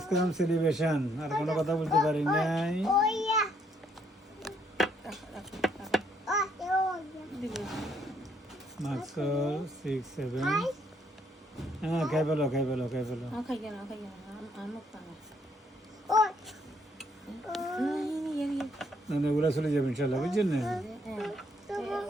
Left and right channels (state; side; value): normal; both; correlation 0.70